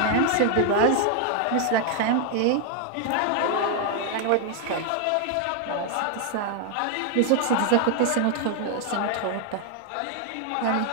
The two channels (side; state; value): both; different; correlation 0.00